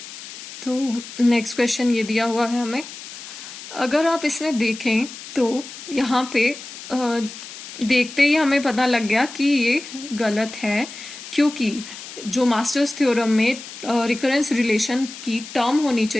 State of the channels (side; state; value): left; noise; hiss, 13 dB below the sound